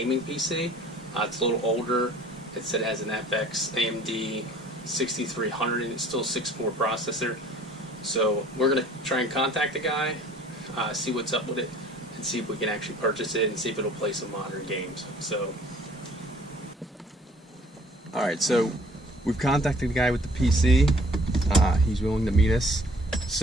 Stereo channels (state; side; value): normal; both; correlation 0.54